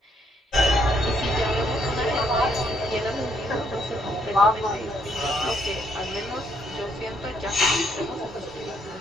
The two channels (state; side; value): normal; both; correlation 0.71